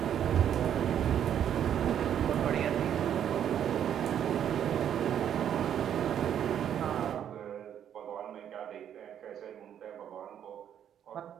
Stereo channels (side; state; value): left; quieter; 9.6 dB